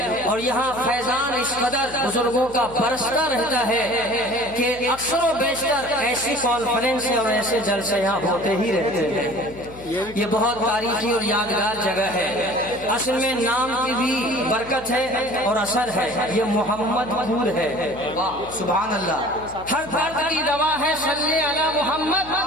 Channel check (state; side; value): noise; left; hum, 18 dB below the sound